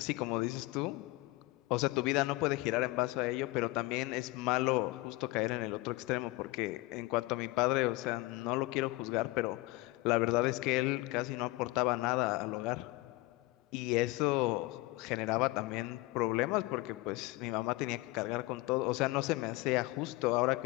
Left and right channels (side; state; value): right; quieter; 21.1 dB